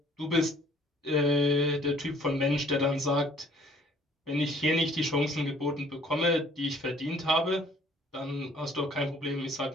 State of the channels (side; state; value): both; normal; correlation 0.57